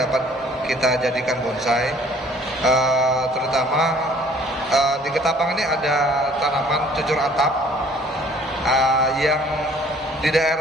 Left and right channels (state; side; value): normal; both; correlation 0.56